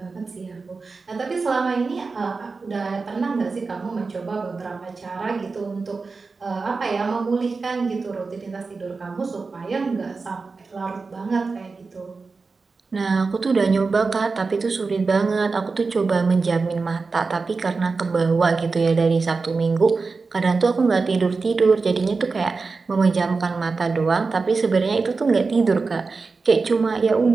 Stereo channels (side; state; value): left; quieter; 4.3 dB